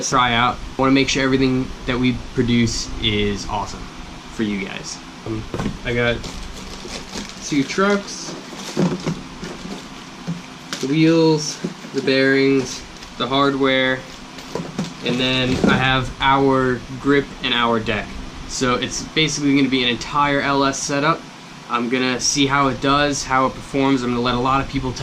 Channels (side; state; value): both; identical; correlation 1.00